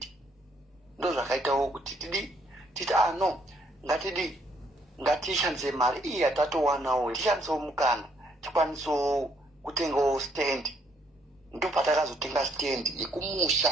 Ndo zvakaitawo kuti titi no, ngatishandise mari iyi yatatowanawo, tishandisewo mukana, tikwanisewo kutengawo stand. Ndo patakazotenga stand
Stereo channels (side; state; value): both; normal; correlation 0.69